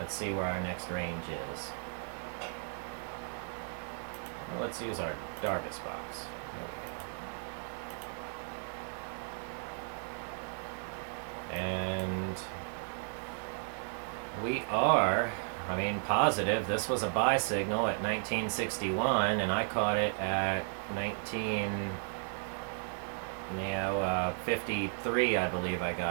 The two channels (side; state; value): left; silent; 55 dB below the other